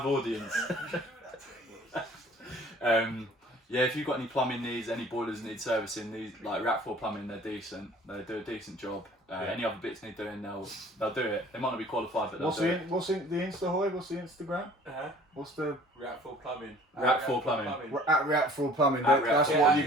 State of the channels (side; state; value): both; normal; correlation 0.51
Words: audience. Yeah, if you've got any plumbing needs, any boilers need servicing, these like React 4 Plumbing, they're decent. They do a decent job. Any other bits need doing, they'll do it. They might not be qualified, but they'll do it. What's the Insta, Hoy? What's the Instagram? What's the React 4 Plumbing. React 4 Plumbing. at React 4 Plumbing? At That's React what 4.